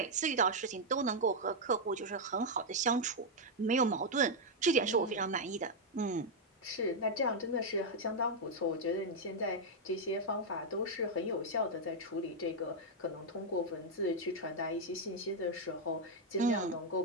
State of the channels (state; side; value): normal; both; correlation -0.02